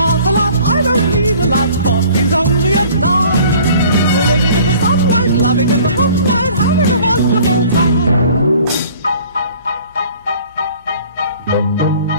a lot, I don't need a lot. Coffee's only a dime. Living in the sunlight, loving in the moonlight, having a wonderful time.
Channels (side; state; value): both; inverted; correlation -0.51